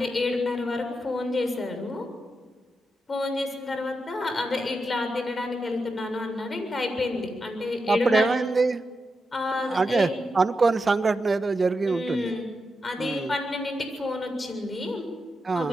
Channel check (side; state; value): both; normal; correlation 0.87